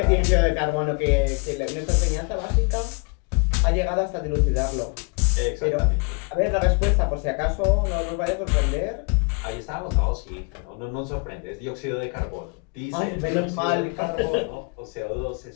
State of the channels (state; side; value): quieter; right; 35.3 dB